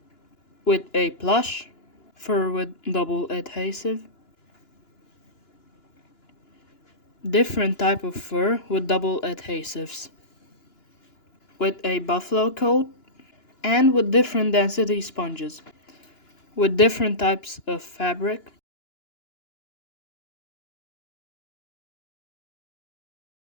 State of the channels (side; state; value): right; late; 2.9 ms